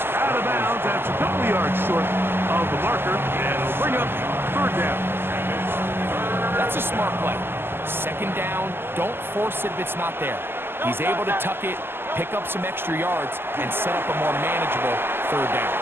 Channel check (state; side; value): late; left; 0.11 ms